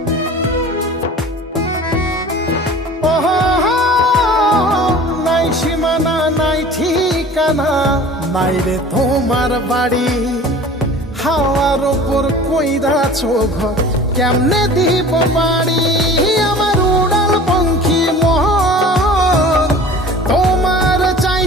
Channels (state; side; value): normal; both; correlation 0.42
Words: নাই সীমানা নাই ঠিকানা নাই রে তোমার বাড়ি, হাওয়ার উপর কইরাছ ঘর কেমনে দিব পারি। আমার উড়াল পঙ্খী মন তোমার